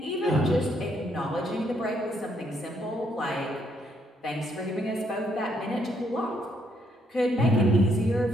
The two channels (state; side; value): normal; both; correlation 0.72